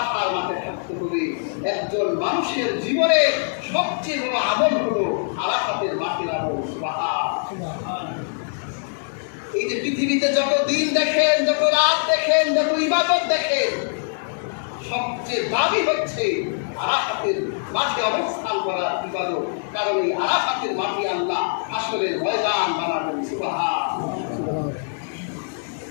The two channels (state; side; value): silent; right; digital silence